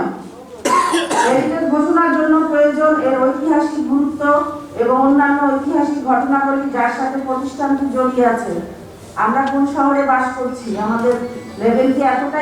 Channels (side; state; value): both; identical; correlation 1.00